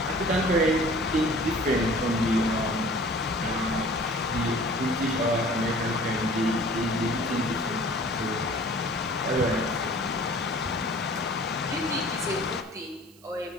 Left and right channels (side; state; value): right; noise; hiss, 27 dB below the sound